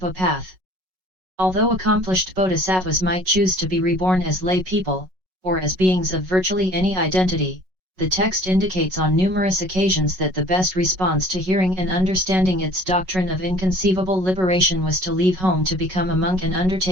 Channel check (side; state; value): left; late; 5.4 ms